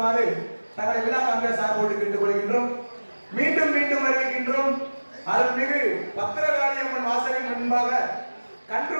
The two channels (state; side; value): inverted; both; correlation -1.00